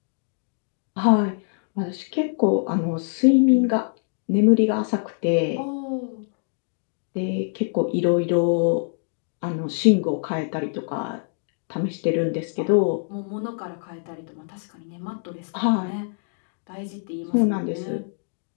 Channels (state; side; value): silent; right; digital silence